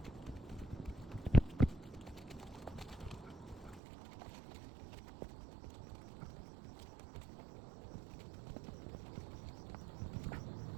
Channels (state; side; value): drops out; left; at 3.8 s